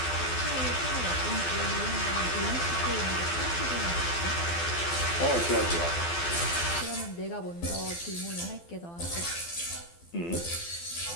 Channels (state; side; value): late; right; 12 ms